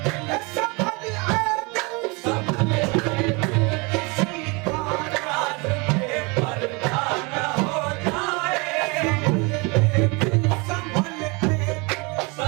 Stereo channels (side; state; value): left; quieter; 28.5 dB